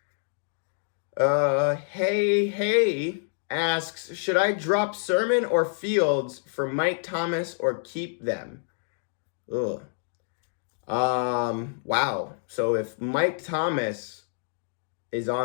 Hey asks, should I drop Sermon or Fields for Mike Thomas or keep them? Ugh. Wow. So if Mike Thomas is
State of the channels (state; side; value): silent; right; digital silence